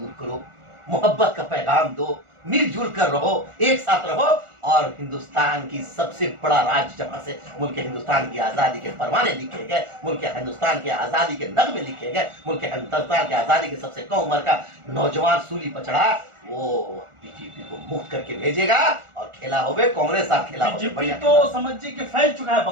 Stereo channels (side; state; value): left; late; 1.4 ms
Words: करो, मोहब्बत का पैगाम दो, मिलजुल कर रहो, एक साथ रहो, और हिंदुस्तान की सबसे बड़ा राज्य जहां से मुल्क हिंदुस्तान की आजादी के परवाने लिखे गए, मुल्क हिंदुस्तान के आजादी के नगमे लिखे गए, मुल्क हिंदुस्तान की आजादी के सबसे कम उम्र का नौजवान सूली पर चढ़ा, वो बीजेपी को मुक्त करके भेजेगा और खेला होवे कांग्रेस साथ खेला होवे। बीजेपी तो समझिए कि फैल चुका है